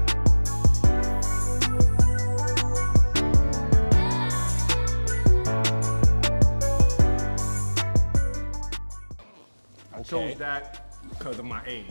I chose that because of my age.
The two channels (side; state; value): both; inverted; correlation -1.00